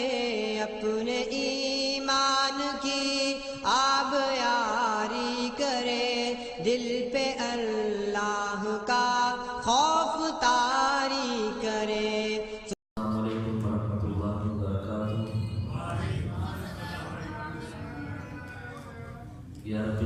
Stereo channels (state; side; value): identical; both; correlation 1.00